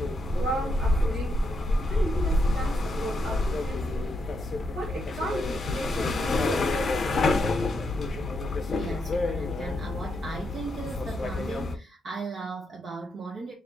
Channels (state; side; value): normal; both; correlation 0.81